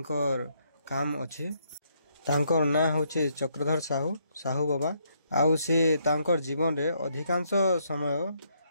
काम अच्छे तांकर ना होचे चक्रधर साहू साहू बाबा आउ से तांकर जीवन रे अधिकांश समय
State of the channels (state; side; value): inverted; both; correlation -0.73